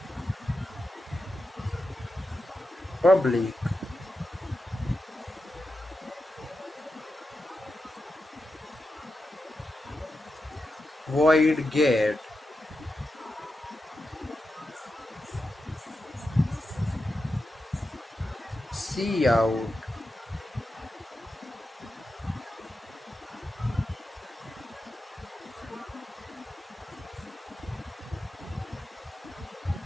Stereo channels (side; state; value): both; normal; correlation 0.89